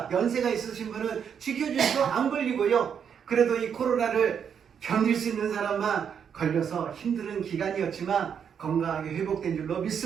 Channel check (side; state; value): left; quieter; 7.6 dB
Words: 연세가 있으신 분은 지켜주셔서 안 걸리고요. 그래도 이 코로나를 견딜 수 있는 사람만 걸려서 힘든 기간이었지만 건강하게 회복된 줄로